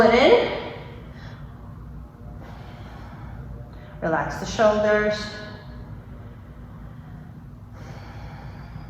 it in. Relax the shoulders.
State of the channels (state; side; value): identical; both; correlation 1.00